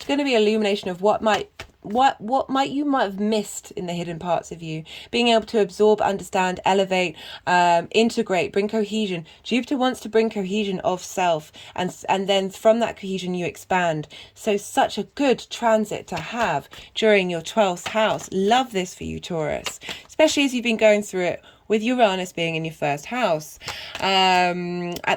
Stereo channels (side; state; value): both; identical; correlation 1.00